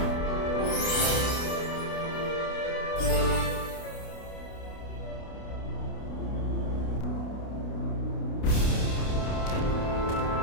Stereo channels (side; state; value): right; late; 29 ms